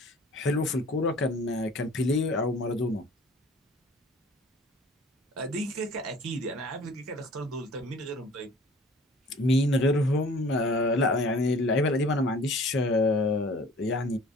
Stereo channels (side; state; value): both; normal; correlation 0.49